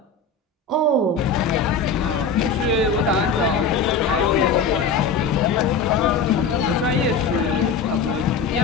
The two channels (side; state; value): right; quieter; 5.0 dB